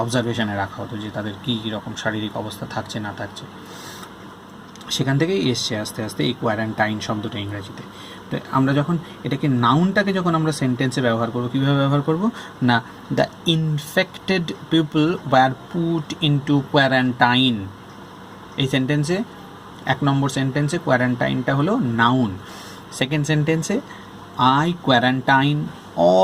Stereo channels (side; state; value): both; identical; correlation 1.00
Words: অবজারভেশনে রাখা হতো যে তাদের কী রকম শারীরিক অবস্থা থাকছে না থাকছে। সেখান থেকেই এসছে আস্তে আস্তে এই কোয়ারেন্টাইন শব্দটা ইংরেজিতে। তো আমরা যখন এটাকে নাউনটাকে যখন আমরা সেন্টেন্সে ব্যবহার করবো, কীভাবে ব্যবহার করব না, the infected people were put into quarantine. এই সেন্টেন্সে 1 নম্বর সেন্টেন্সে কোয়ারেন্টাইনটা হলো নাউন। সেকেন্ড সেন্টেন্সে I quarantine